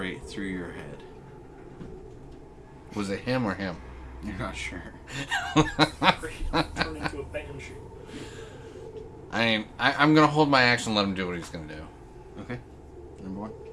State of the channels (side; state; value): both; identical; correlation 1.00